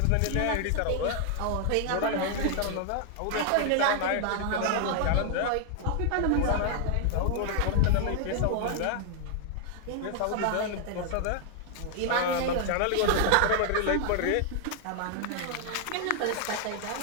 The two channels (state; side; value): different; both; correlation 0.00